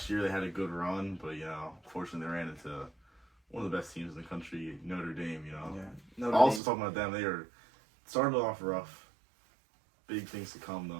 year they had a good run, but unfortunately they ran into one of the best teams in the country, Notre Dame. Talking about them, they are started off rough. Big things to come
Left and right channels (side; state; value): left; drops out; at 6.6 s